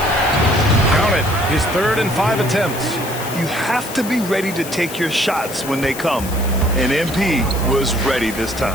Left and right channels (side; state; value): left; noise; hiss, 12 dB below the sound